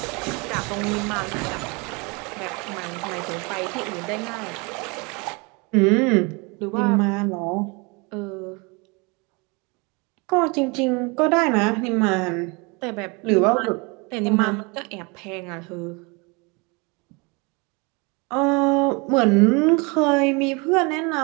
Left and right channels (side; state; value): left; quieter; 29.0 dB